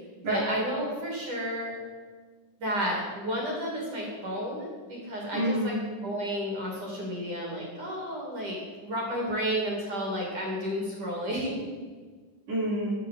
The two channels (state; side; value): late; left; 10 ms